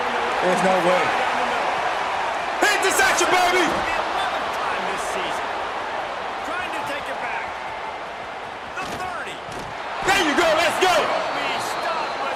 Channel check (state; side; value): identical; both; correlation 1.00